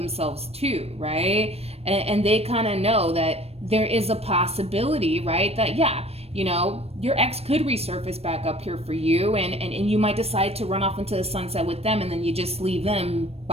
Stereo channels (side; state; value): left; late; 0.29 ms